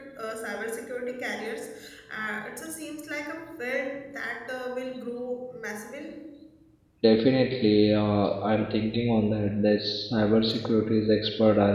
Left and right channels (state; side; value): identical; both; correlation 1.00